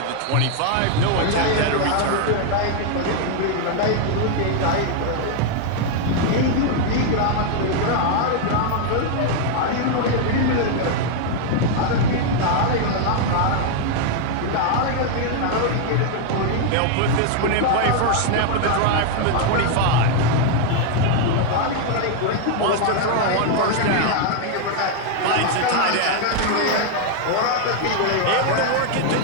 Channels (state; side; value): different; both; correlation 0.00